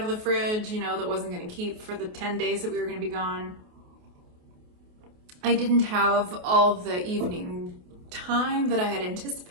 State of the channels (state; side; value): late; left; 28 ms